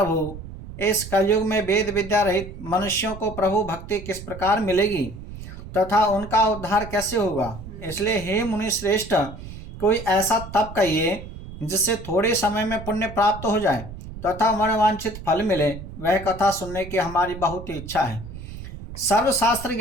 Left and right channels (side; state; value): right; noise; rumble, 12 dB below the sound